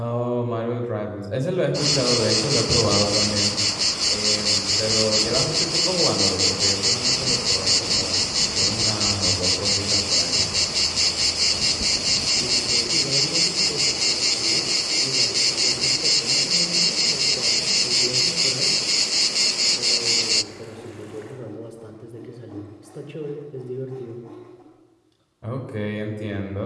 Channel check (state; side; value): identical; both; correlation 1.00